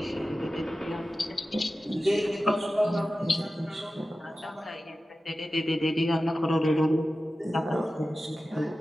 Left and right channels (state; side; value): normal; both; correlation 0.94